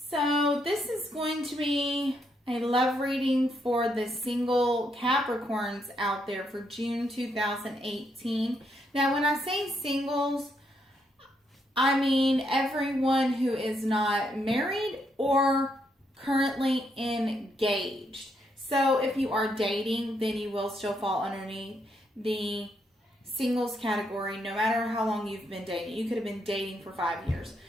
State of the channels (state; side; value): normal; both; correlation 0.76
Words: this is going to be a love reading for the single Capricorns out there for June 2018. Now when I say singles, I mean everyone who is not married or currently engaged. So if you are dating, then you will still fall underneath the singles category, no matter how long you've been dating. You could have been dating for 5 years.